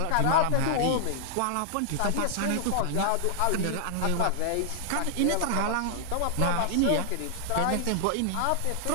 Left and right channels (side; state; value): both; different; correlation -0.01